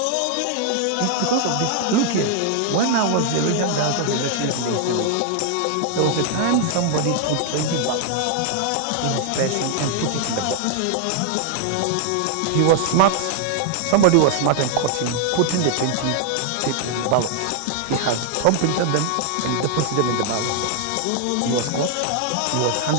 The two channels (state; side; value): different; both; correlation 0.00